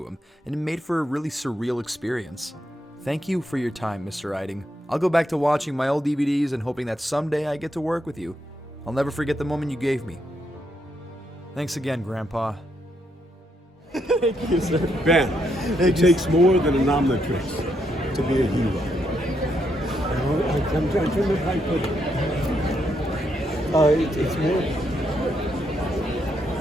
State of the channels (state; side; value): normal; both; correlation 0.78